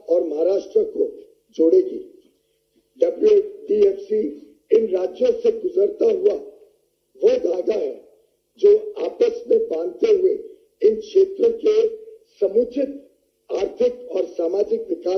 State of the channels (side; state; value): both; identical; correlation 1.00